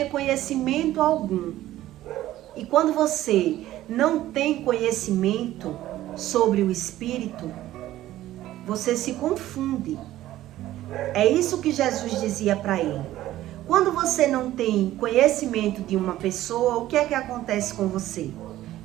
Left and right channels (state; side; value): quieter; left; 14.5 dB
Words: conhecimento algum. E quando você não tem conhecimento sobre o Espírito, você se confunde. É isso que Jesus dizia para ele. Quando você não tem conhecimento de uma pessoa, o que é que acontece com você?